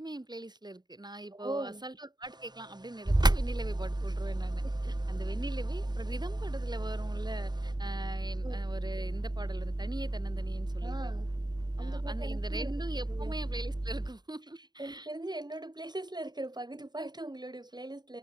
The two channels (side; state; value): left; late; 0.20 ms